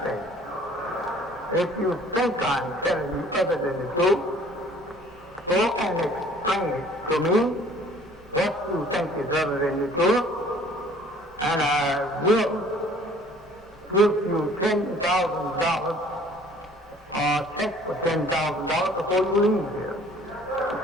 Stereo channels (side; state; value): both; normal; correlation 0.53